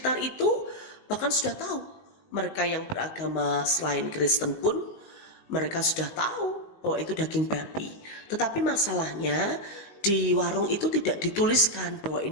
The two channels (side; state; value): right; late; 19 ms